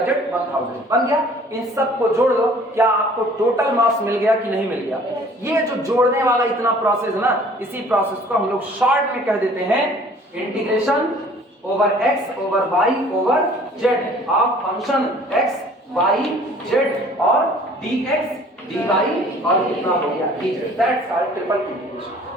z 1000 बन गया। इन सब को जोड़ दो, क्या आपको टोटल मास मिल गया कि नहीं मिल गया। ये जो जोड़ने वाला इतना प्रोसेस है ना, इसी प्रोसेस को हम लोग शॉर्ट में कह देते हैं integration over x over y over z of function x y z और dx dy और कितना हो गया dz। That's called triple integration.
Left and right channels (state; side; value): normal; both; correlation 0.52